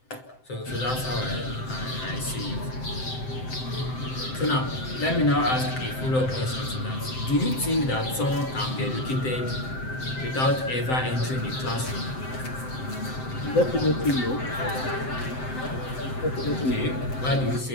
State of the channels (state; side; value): late; right; 7.7 ms